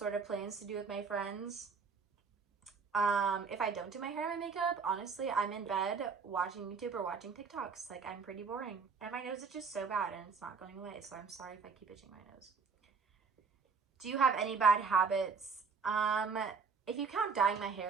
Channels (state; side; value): quieter; left; 5.2 dB